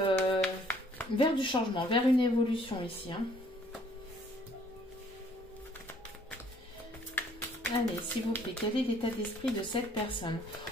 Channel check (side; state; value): both; normal; correlation 0.61